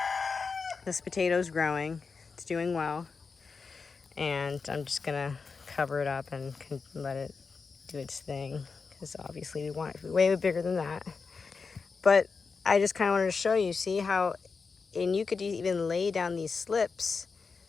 this potato's growing. It's doing well, and I'm just gonna cover it up and let it do its thing, because obviously we want it to be way bigger than that. But I just kind of wanted to show you, see how, and you could even lay down these slips,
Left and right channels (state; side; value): quieter; right; 4.9 dB